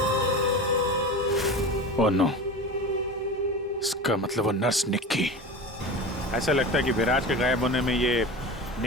ओह नो, इसका मतलब वो नर्स निक्की। ऐसा लगता है कि विराज के गायब होने में ये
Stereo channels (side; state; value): both; normal; correlation 0.30